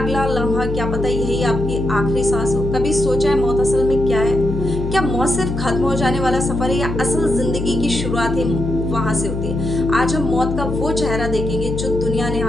लम्हा क्या पता यही आपकी आखिरी सांस हो। कभी सोचा है मौत असल में क्या है? क्या मौत सिर्फ खत्म हो जाने वाला सफर है या असल जिंदगी की शुरुआत ही वहां से होती है? आज हम मौत का वो चेहरा देखेंगे जो दुनिया ने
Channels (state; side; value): noise; left; hum, 5 dB below the sound